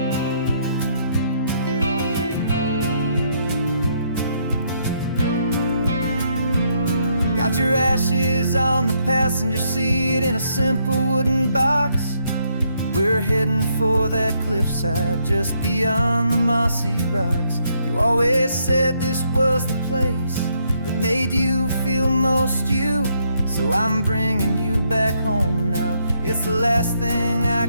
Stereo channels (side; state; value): both; inverted; correlation -0.73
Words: Got your ashes on the passenger seat in a simple wooden box. We're heading for that cliffside just beyond the mossy rocks. You always said this was the place that made you feel most you. So I'm bringing you back home now. It's the last thing I